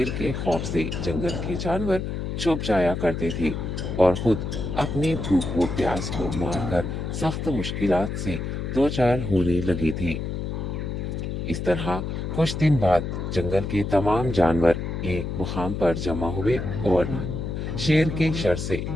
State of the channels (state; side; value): noise; left; hum, 4 dB below the sound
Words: के खौफ से जंगल के जानवर छुप जाया करते थे और खुद अपनी भूख व प्यास को मारकर सख्त मुश्किलात से दो चार होने लगे थे। इस तरह कुछ दिन बाद जंगल के तमाम जानवर एक मुकाम पर जमा हुए और शेर के शर से